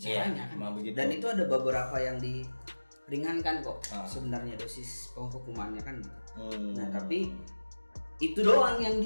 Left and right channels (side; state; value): both; inverted; correlation -1.00